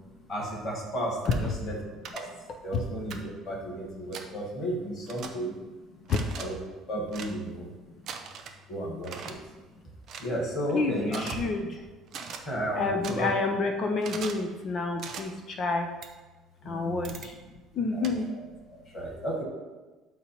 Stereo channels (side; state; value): both; normal; correlation 0.53